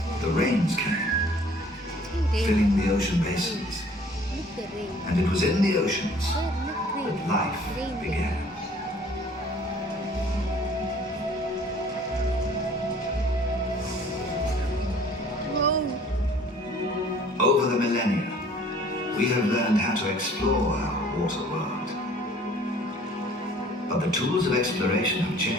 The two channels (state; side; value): normal; both; correlation 0.53